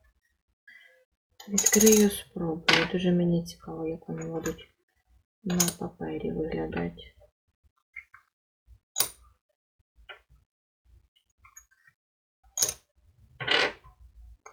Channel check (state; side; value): identical; both; correlation 1.00